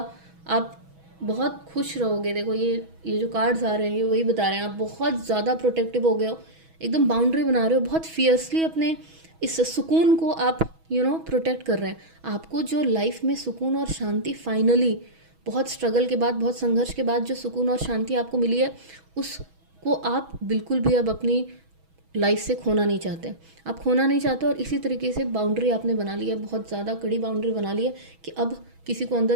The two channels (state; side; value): late; left; 6.2 ms